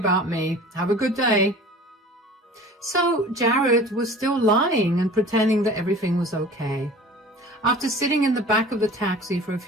me. Have a good day. So Jared was still lying and pretending that everything was okay. After sitting in the back of the taxi for a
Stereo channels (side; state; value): both; normal; correlation 0.43